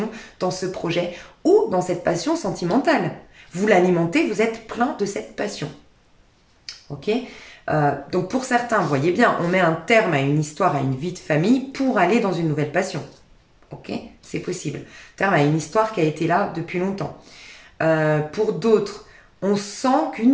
dans ce projet ou dans cette passion sentimentale. Vous l'alimentez, vous êtes plein de cette passion. Ok ? Donc pour certains, vous voyez bien, on met un terme à une histoire, à une vie de famille pour aller dans une nouvelle passion. Ok ? C'est possible. Terme à une histoire qui a été là depuis longtemps. Pour d'autres, on sent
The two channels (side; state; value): both; identical; correlation 1.00